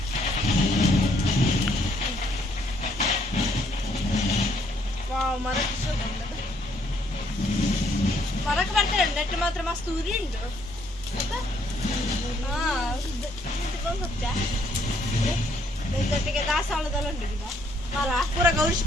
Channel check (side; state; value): both; normal; correlation 0.67